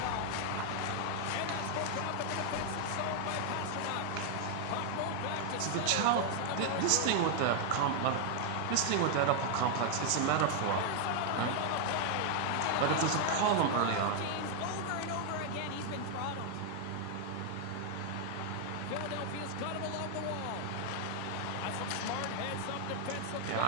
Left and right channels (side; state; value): both; different; correlation 0.00